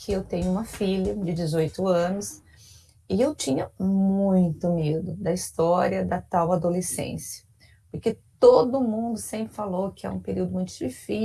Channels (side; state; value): both; identical; correlation 1.00